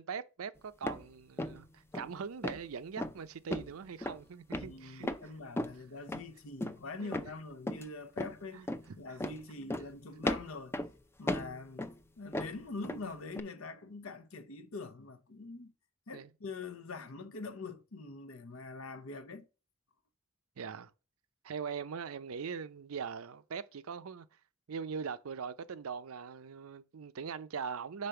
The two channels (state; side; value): normal; both; correlation 0.29